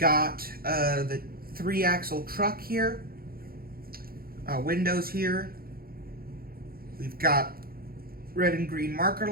the 3-axle truck here, windows here. We've got red and green marker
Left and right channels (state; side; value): late; left; 0.43 ms